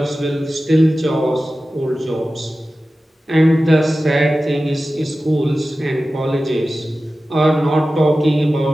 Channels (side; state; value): both; normal; correlation 0.95